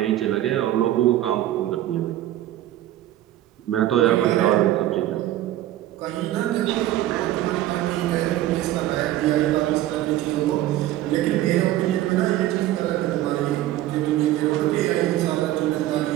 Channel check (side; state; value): left; quieter; 14.0 dB